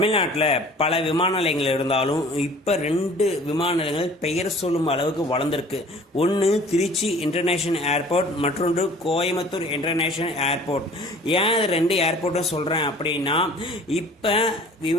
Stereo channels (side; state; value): both; normal; correlation 0.48